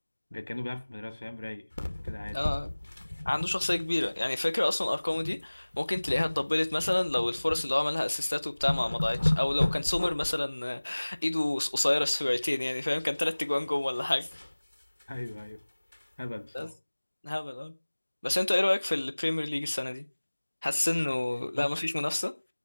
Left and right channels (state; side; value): inverted; both; correlation -1.00